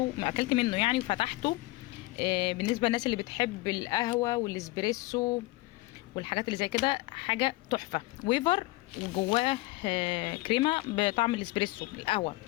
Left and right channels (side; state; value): right; quieter; 20.6 dB